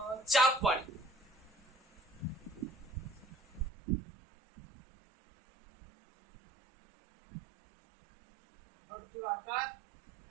ચાપ વાળી. વર્તુળાકાર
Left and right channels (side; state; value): left; drops out; at 3.7 s